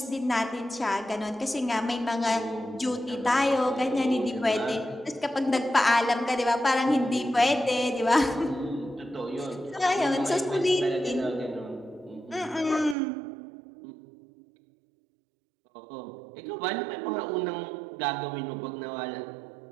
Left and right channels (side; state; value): left; drops out; at 13.0 s